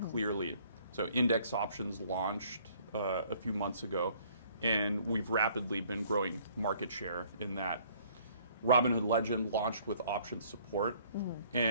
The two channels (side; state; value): both; inverted; correlation -0.59